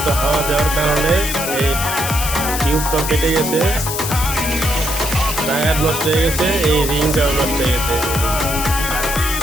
হাওয়া দেওয়ার কারণে এই টিউবটা কেটে গেছে, টায়ার নষ্ট হয়ে গেছে, এই রিংটাও নষ্ট হয়ে গেছে।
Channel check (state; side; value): noise; left; hiss, 4 dB below the sound